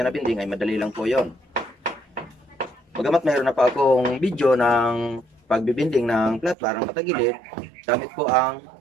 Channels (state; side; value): drops out; left; at 6.6 s